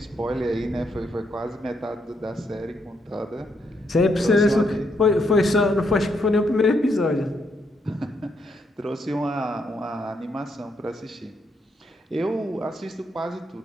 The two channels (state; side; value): normal; both; correlation 0.76